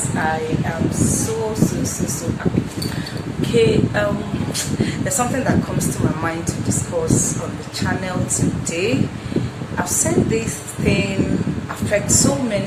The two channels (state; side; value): identical; both; correlation 1.00